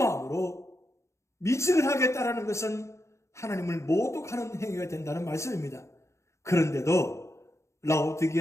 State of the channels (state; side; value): late; right; 0.14 ms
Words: 미직을 하겠다라는 것은 하나님을 모독하는 행위가 된다는 말씀입니다. 그런데도